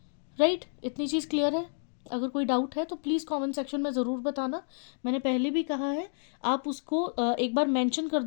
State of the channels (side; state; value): right; silent; 58 dB below the other